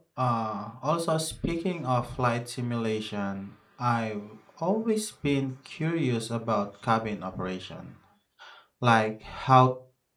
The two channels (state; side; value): identical; both; correlation 1.00